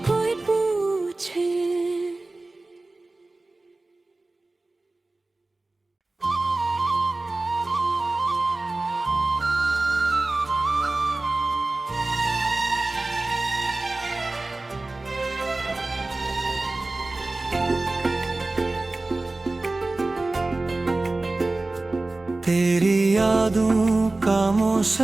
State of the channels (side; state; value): left; quieter; 3.1 dB